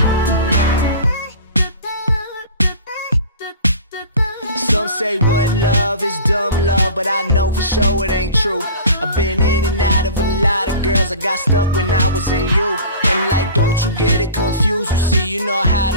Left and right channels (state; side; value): inverted; both; correlation -0.39